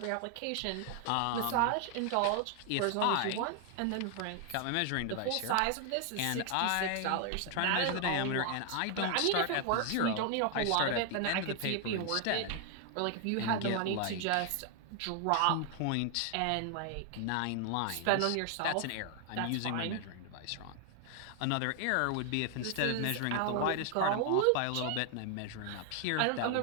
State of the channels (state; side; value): different; both; correlation 0.00